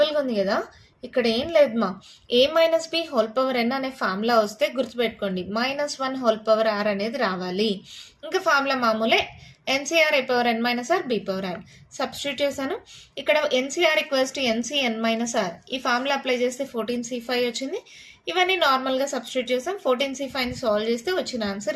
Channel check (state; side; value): identical; both; correlation 1.00